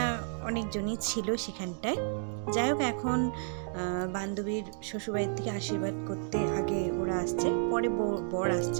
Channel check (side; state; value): left; silent; digital silence